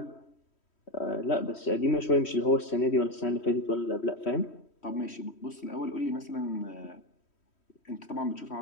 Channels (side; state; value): right; late; 3.1 ms